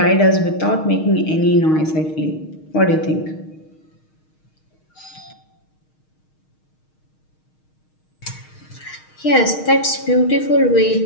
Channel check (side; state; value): right; late; 6.4 ms